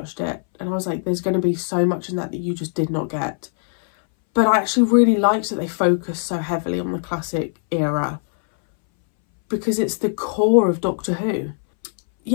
it and I was like, there's going to be so much in that you just did not get. But I actually really liked that they focused so heavily on the classic era, because it's the core of Doctor Who.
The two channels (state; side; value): silent; right; 63 dB below the other